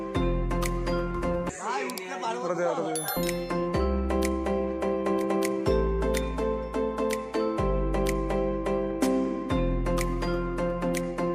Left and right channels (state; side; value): identical; both; correlation 1.00